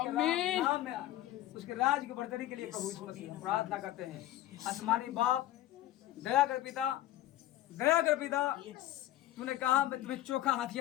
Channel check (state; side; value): quieter; right; 14.0 dB